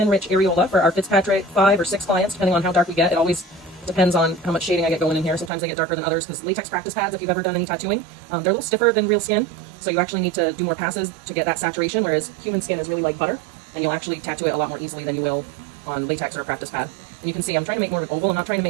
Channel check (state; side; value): drops out; left; at 5.5 s